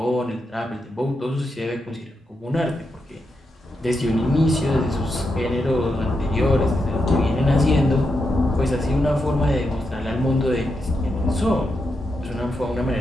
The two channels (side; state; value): both; normal; correlation 0.85